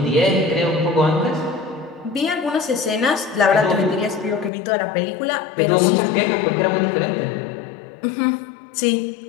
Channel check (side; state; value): right; drops out; at 4.5 s